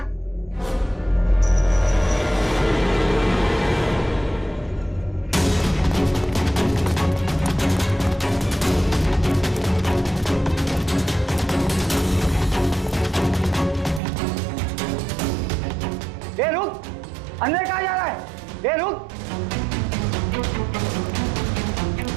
ये रुक! अंदर कहाँ जा रहा है? ये रुक!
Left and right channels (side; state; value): left; drops out; at 14.0 s